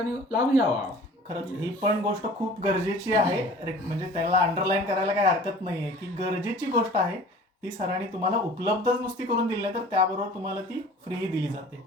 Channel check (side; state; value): both; normal; correlation 0.45